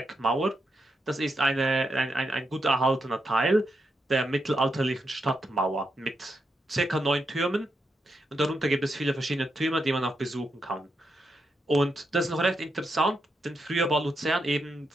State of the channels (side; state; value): both; normal; correlation 0.83